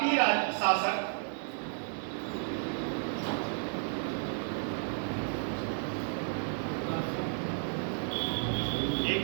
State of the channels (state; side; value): silent; left; 56 dB below the other